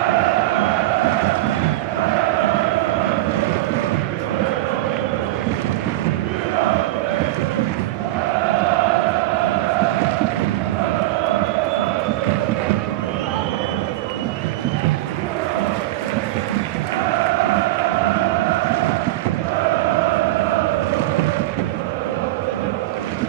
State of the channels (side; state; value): left; quieter; 16.7 dB